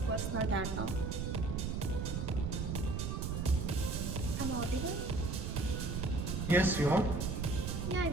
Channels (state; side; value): noise; right; rumble, 2 dB below the sound